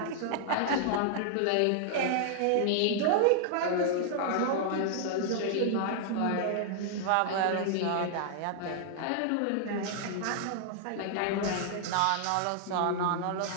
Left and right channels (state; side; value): different; both; correlation 0.00